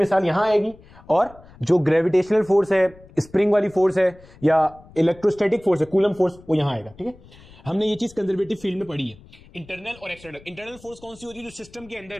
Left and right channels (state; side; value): noise; left; rumble, 23 dB below the sound